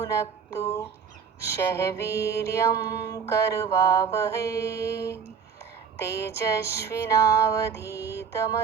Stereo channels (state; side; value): quieter; left; 6.7 dB